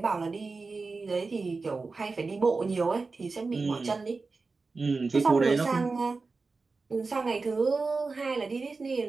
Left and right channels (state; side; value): quieter; left; 4.0 dB